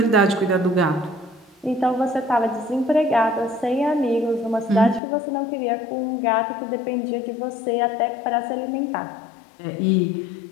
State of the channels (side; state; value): right; drops out; at 5.0 s